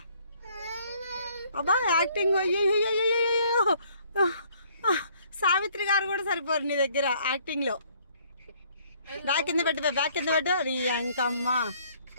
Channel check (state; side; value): inverted; both; correlation -0.62